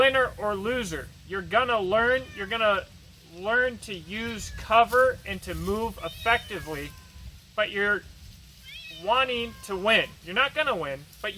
or loser. You're gonna learn to use cover and to move effectively, but you're wanting to win. You're not gonna win, but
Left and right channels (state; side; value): identical; both; correlation 1.00